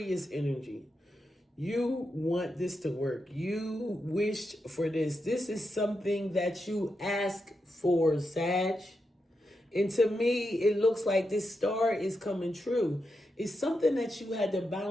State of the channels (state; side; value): normal; both; correlation 0.86